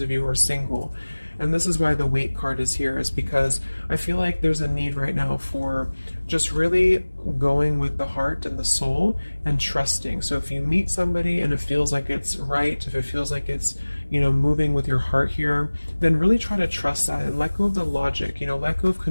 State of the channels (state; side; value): inverted; both; correlation -1.00